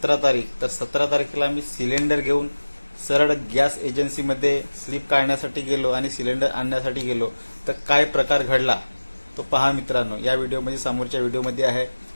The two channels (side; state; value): both; inverted; correlation -1.00